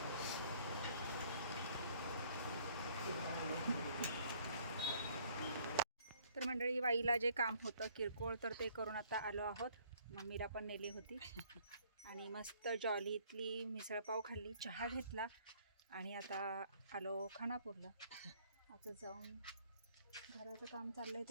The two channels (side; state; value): both; inverted; correlation -0.61